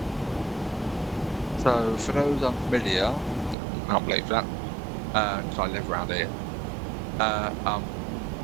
for those unfamiliar, I can't believe that, because I live around here.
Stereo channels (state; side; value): drops out; left; at 3.6 s